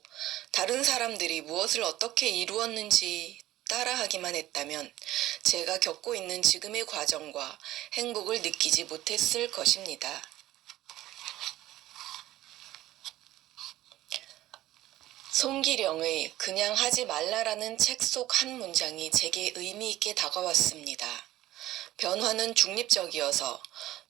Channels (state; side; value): quieter; left; 15.3 dB